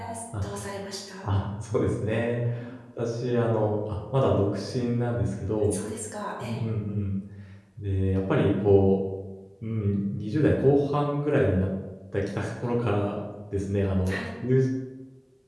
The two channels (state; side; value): identical; both; correlation 1.00